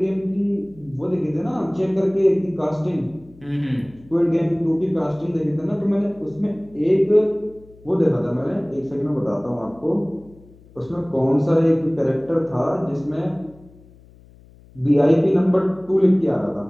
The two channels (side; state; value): left; noise; hum, 25 dB below the sound